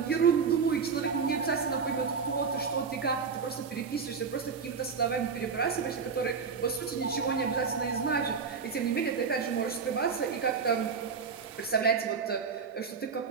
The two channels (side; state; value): left; quieter; 5.6 dB